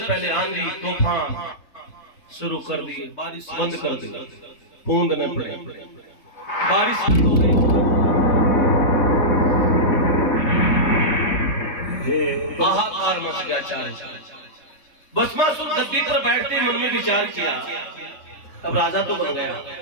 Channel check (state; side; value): late; right; 3.2 ms